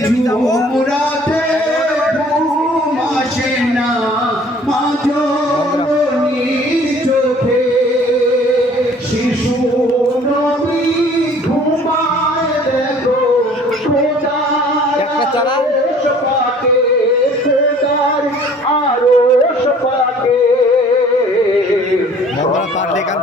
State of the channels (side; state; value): both; normal; correlation 0.53